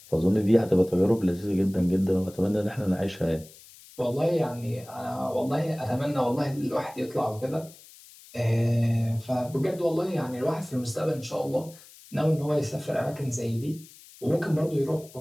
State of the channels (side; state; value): left; noise; hiss, 22 dB below the sound